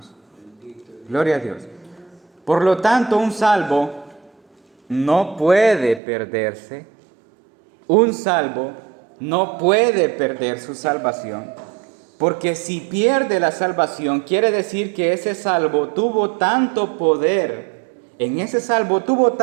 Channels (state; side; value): drops out; left; at 6.0 s